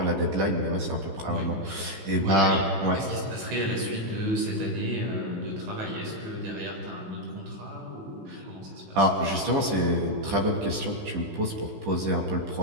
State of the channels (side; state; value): left; late; 15 ms